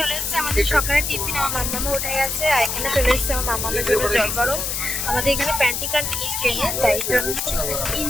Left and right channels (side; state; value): left; noise; hiss, 2 dB below the sound